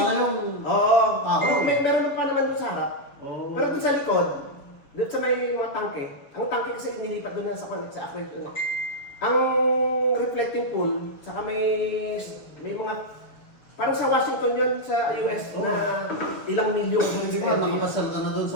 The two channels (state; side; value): late; right; 7.0 ms